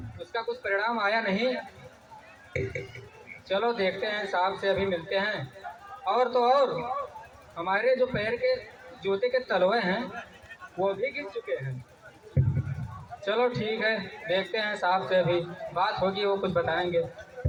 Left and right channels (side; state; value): both; identical; correlation 1.00